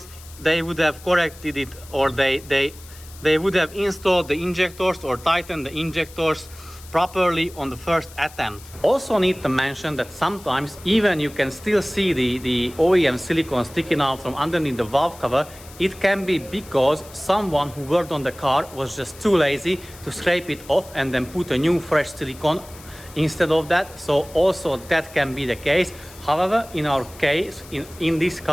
they would have corrected it, or they would have installed the injectors or tightened the injectors properly on the first attempt. Also need to mention that sometimes even you can still see the OEM silicone sticking out from underneath the valve cover. It can be because someone who worked on the car was just too lazy to scrape it off and then put a new fresh silicone instead of that. So also that can be the case. However, in our case, in this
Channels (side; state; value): left; noise; hiss, 20 dB below the sound